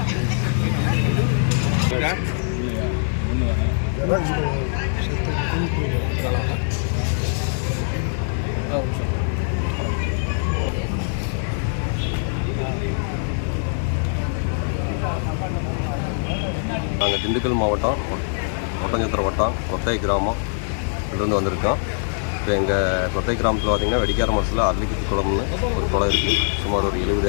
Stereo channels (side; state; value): right; silent; 64 dB below the other